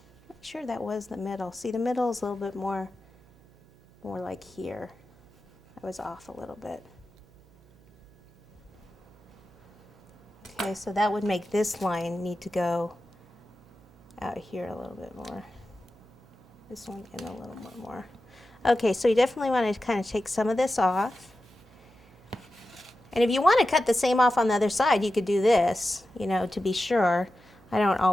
Sure, that was the middle. See, the middle is a little bit more like here. I was off a little bit. Okay, so that would make this line need to go out here a little bit more. This one in a little bit more. Okay, so you definitely want to kind of take some of this off. And if you want to cut the same off on the other side, you could do this, you know, to be sure. I don't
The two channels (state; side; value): noise; right; hum, 27 dB below the sound